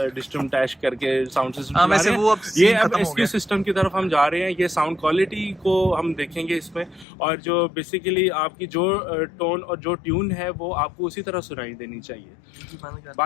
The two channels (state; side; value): drops out; right; at 7.1 s